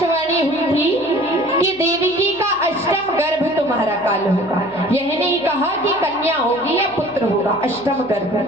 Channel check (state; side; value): noise; left; hum, 27 dB below the sound